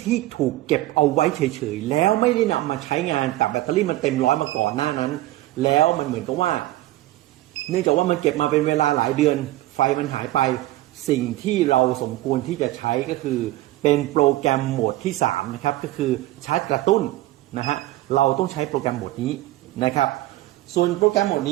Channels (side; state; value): left; quieter; 16.6 dB